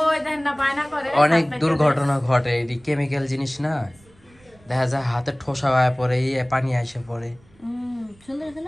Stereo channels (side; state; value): right; noise; rumble, 29 dB below the sound